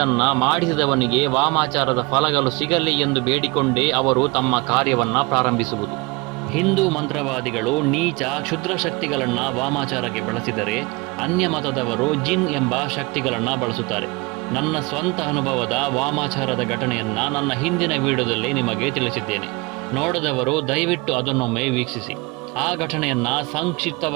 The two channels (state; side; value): quieter; left; 25.8 dB